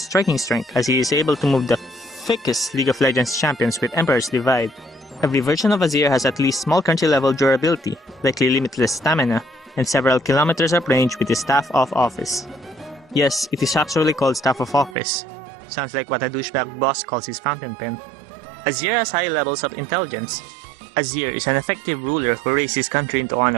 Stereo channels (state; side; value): drops out; left; at 15.0 s